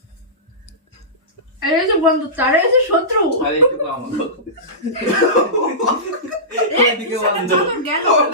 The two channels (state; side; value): normal; both; correlation -0.20